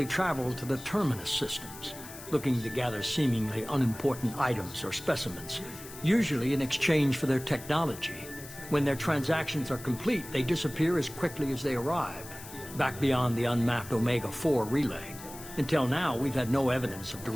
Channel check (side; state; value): left; noise; hiss, 15 dB below the sound